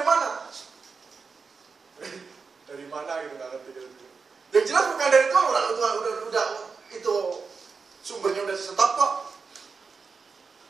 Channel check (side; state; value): left; quieter; 5.0 dB